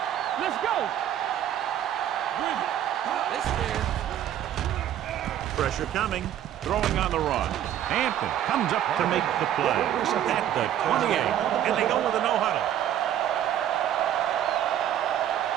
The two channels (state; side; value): quieter; left; 11.0 dB